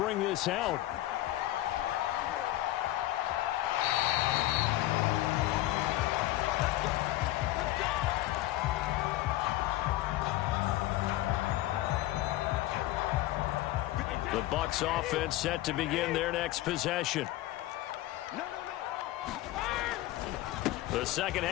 this out. The Bucs offense set to begin their next possession. The second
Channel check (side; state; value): right; quieter; 16.0 dB